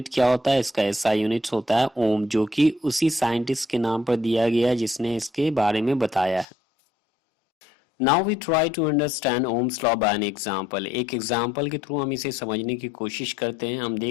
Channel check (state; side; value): drops out; right; at 6.5 s